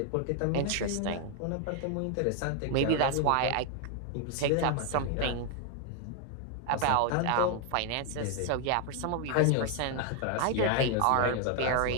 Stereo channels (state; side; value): different; both; correlation 0.00